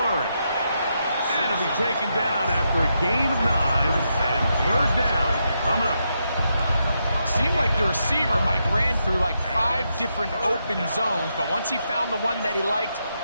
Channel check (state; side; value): inverted; both; correlation -0.82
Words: And he'll be taken down after a gain of 9. And third down coming up. Seemed like the receiver, Mike, ran through like 5 different open zones, but once he found the one that he liked,